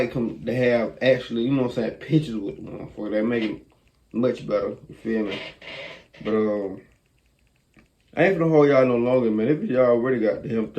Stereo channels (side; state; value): both; identical; correlation 1.00